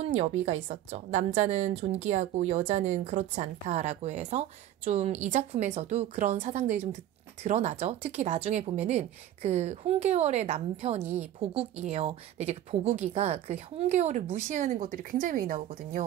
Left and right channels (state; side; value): quieter; left; 12.2 dB